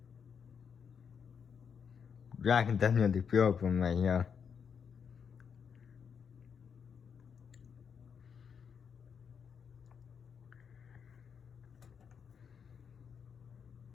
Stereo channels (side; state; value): right; quieter; 6.8 dB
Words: Yeah, I can definitely feel it from right here.